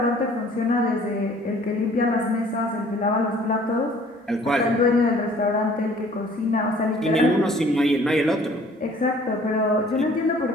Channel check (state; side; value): normal; both; correlation 0.54